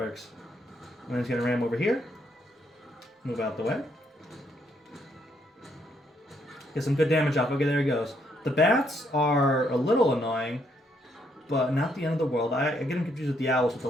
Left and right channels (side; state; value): both; normal; correlation 0.73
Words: And then he's going to ram over here. Move out the way. Get some good damage off. Okay, there he goes. The bats are a little annoying, but not the end of the world. I get them confused with the owls with the